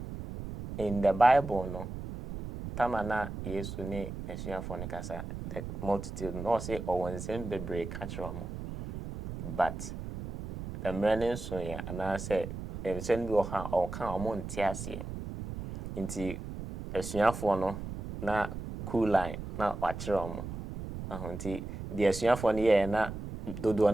in the Bible, no, tamana Yesu ne esuafo ne kasa the multitude no say owonsem bebre catch but the many so ya ana say ensem bi oha o kan omo ntiase nti esuafo no na cool line na wachire omo nti the esuafo no ye na dodo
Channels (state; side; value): noise; right; rumble, 8 dB below the sound